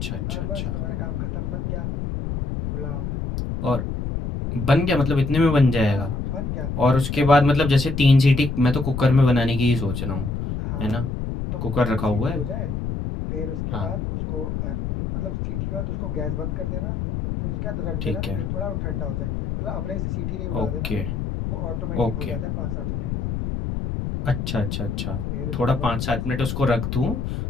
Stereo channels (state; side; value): noise; left; rumble, 3 dB below the sound